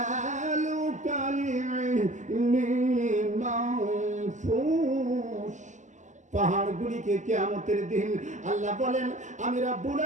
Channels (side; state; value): left; late; 0.35 ms